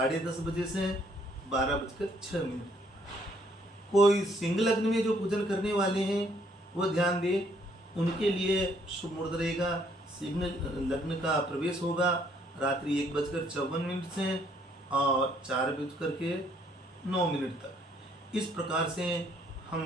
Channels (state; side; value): normal; both; correlation 0.66